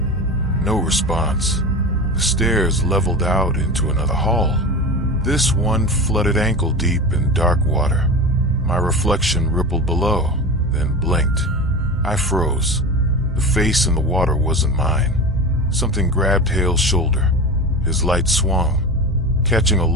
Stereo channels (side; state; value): both; normal; correlation 0.27